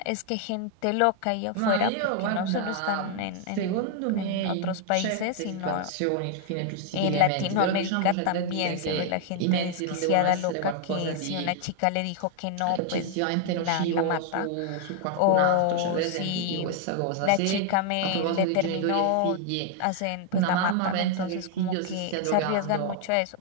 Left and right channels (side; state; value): both; different; correlation 0.00